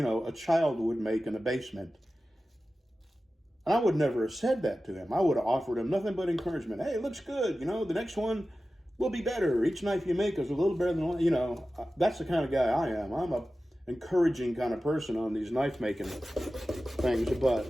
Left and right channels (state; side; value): normal; both; correlation 0.95